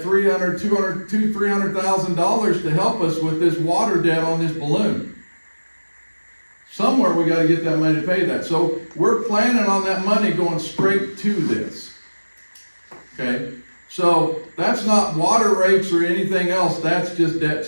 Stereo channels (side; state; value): both; inverted; correlation -1.00